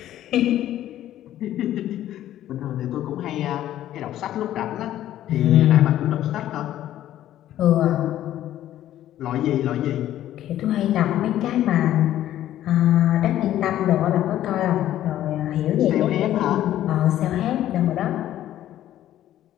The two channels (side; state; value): right; quieter; 12.6 dB